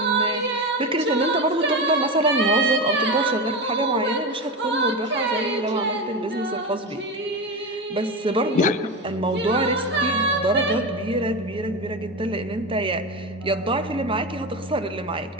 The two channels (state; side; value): normal; both; correlation 0.20